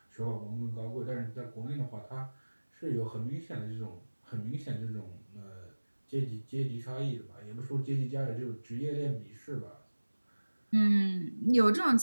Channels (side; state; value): both; inverted; correlation -1.00